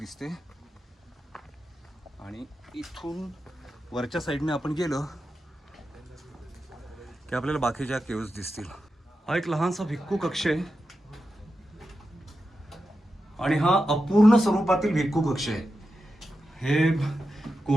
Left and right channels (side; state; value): both; normal; correlation 0.90